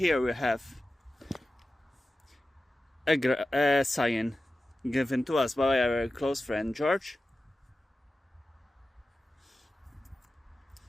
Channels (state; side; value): normal; both; correlation 0.94